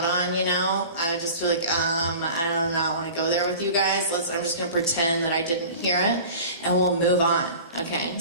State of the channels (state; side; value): inverted; both; correlation -0.40